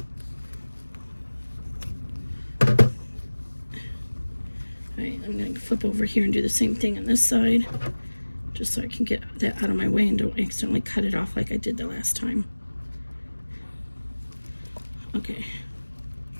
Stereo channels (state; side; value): inverted; both; correlation -1.00